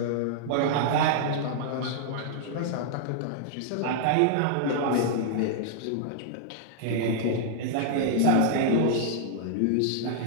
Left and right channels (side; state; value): both; different; correlation -0.01